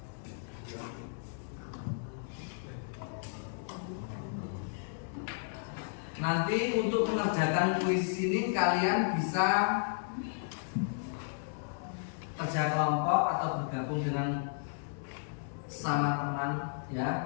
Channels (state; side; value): silent; right; digital silence